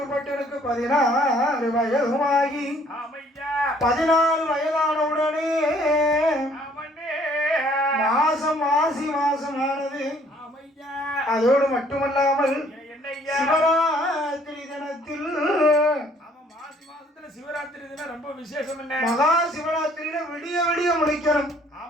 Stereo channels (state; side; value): normal; both; correlation 0.60